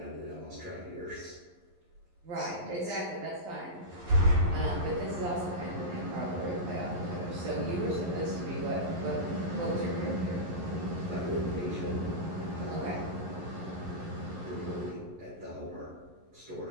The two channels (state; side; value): late; left; 11 ms